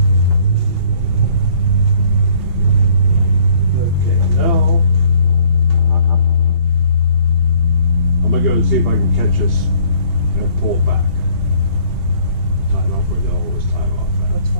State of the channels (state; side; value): late; right; 2.8 ms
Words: Okay, now I'm gonna go and see if I can catch this and pull it back. Tie it off where they'll always tie it off at. What's